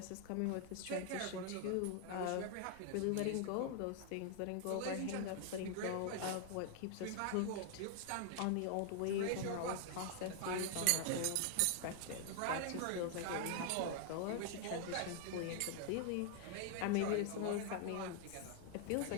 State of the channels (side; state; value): both; different; correlation 0.00